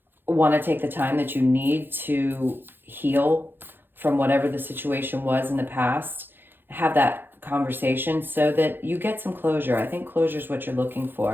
want to take the time that you need to heal from whatever the situation was in the past, have that conversation so that you get some closure. I think closure is what you're looking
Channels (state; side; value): late; left; 0.099 ms